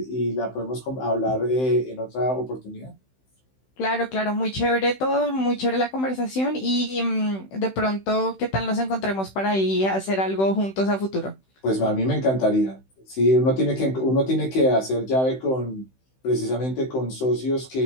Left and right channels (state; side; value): late; right; 16 ms